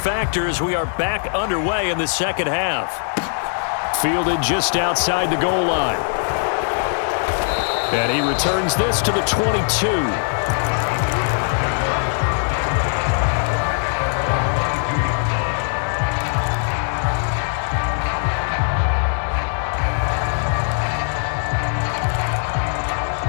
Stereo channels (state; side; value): silent; right; 65 dB below the other